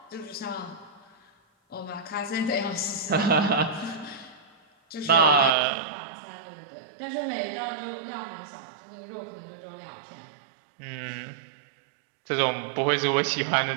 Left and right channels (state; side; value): drops out; left; at 5.5 s